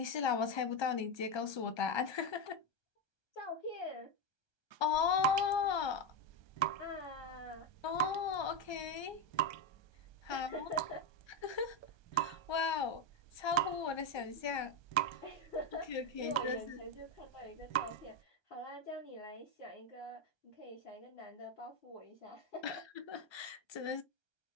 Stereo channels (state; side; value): late; right; 1.2 ms